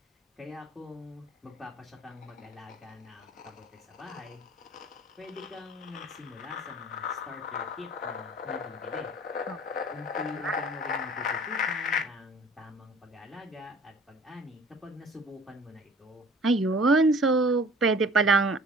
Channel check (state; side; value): normal; both; correlation 0.48